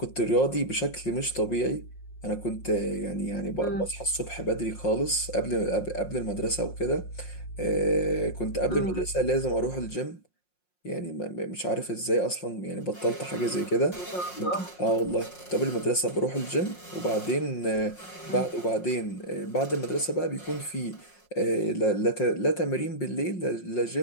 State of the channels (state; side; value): late; right; 5.6 ms